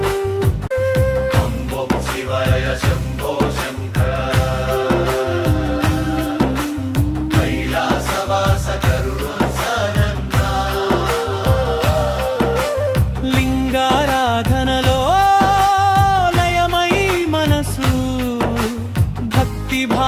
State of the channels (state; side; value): identical; both; correlation 1.00